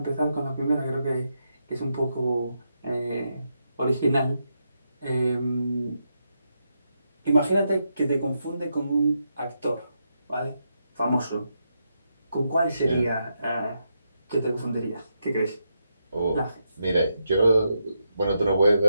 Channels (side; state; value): both; inverted; correlation -0.83